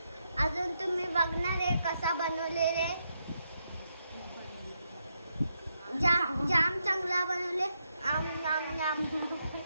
अजून तुम्ही बघणार आहे कसा बनवलेले. जाम चांगला बनवले. आम नाम नाम.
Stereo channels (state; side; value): inverted; both; correlation -0.81